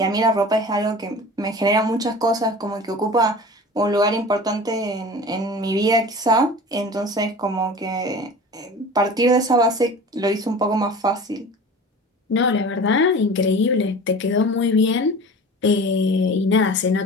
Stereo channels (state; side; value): normal; both; correlation 0.38